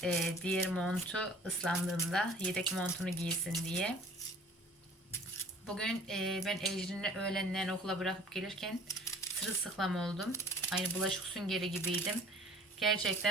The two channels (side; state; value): both; normal; correlation 0.50